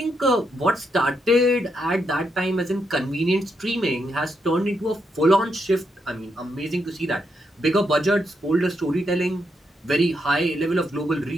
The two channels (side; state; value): both; normal; correlation 0.80